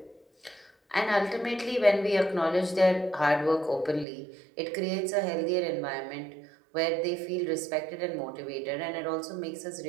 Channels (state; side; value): drops out; left; at 4.0 s